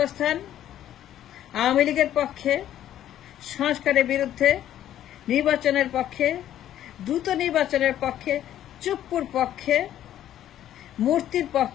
আওয়ামী লীগের পক্ষে, সংস্কারের বিরুদ্ধে, নির্বাচনের পক্ষে, দ্রুত নির্বাচনের পক্ষে, চুপ্পুর পক্ষে, মূর্তির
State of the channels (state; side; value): quieter; right; 11.7 dB